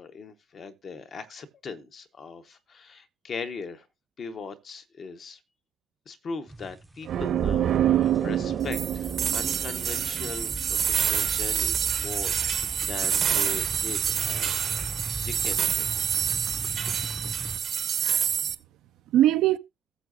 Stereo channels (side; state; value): left; quieter; 7.6 dB